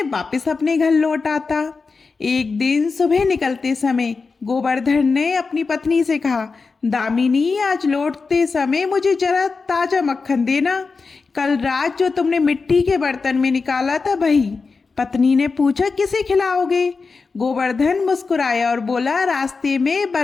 वापस अपने घर लौट आता। एक दिन सुबह निकलते समय गोवर्धन ने अपनी पत्नी से कहा, दामिनी, आज लौटते समय मुझे जरा ताजा मक्खन देना। कल रात जो तुमने मिट्टी के बर्तन में निकाला था वही। पत्नी ने पूछा, किसे खिलाओगे? गोवर्धन मुस्कुराया और बोला, रास्ते में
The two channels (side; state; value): right; quieter; 4.5 dB